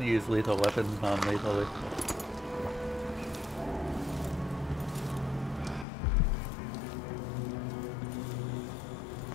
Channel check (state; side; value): drops out; right; at 5.9 s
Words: use lethal weapons non-lethally.